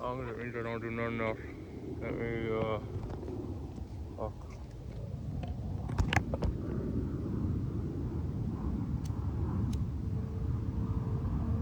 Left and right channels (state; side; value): identical; both; correlation 1.00